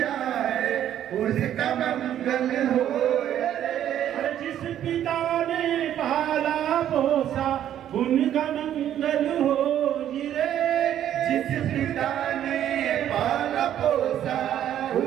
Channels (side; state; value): left; quieter; 10.9 dB